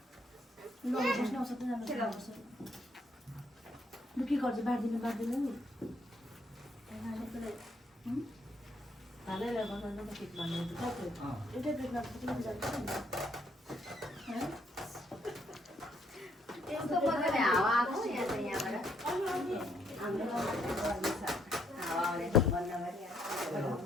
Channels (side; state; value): both; normal; correlation 0.71